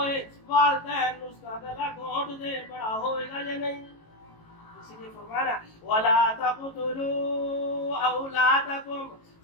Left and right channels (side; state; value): right; late; 18 ms